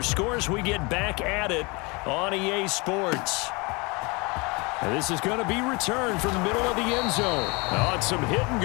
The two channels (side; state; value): right; quieter; 27.6 dB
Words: scores. We get back at it on EA Sports. And this is going to be returned from the middle of the end zone. Oh, and some hitting